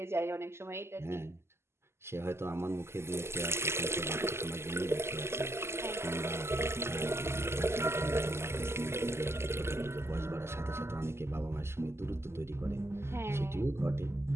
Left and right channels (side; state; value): left; late; 0.12 ms